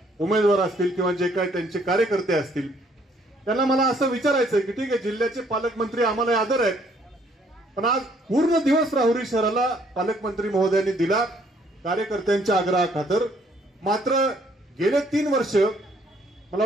उमेदवार असतील किंवा जे काही त्यांचे कार्यकर्ते असतील, त्यांना मला असं विचारायचं की ठीक आहे, जिल्ह्याचे पालकमंत्री आम्हाला आदर आहेत, पण आज पूर्ण दिवस राहुरी शहराला पालकमंत्री महोदयांनी दिला कार्यकर्त्यांच्या आग्रहाखातर. मात्र गेले 3 वर्ष, मला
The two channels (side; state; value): both; normal; correlation 0.65